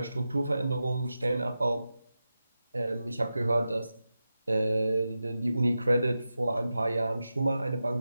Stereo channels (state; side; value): inverted; both; correlation -0.92